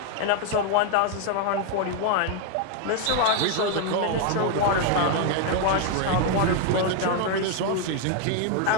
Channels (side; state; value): both; different; correlation 0.01